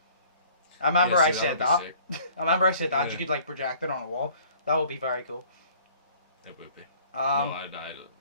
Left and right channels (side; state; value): both; inverted; correlation -0.53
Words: I remember I said that. I remember I said that. You could like project it on a wall. That would be very cool. It would be. I'd